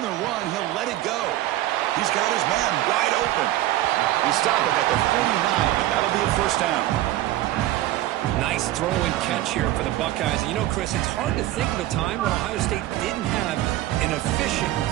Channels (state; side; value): quieter; left; 15.0 dB